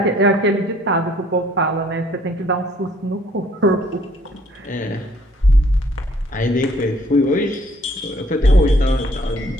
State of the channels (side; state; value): both; normal; correlation 0.62